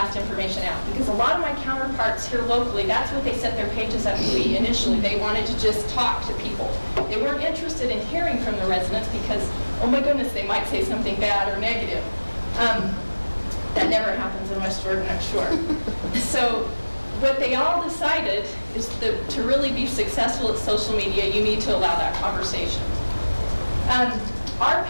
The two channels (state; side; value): inverted; both; correlation -1.00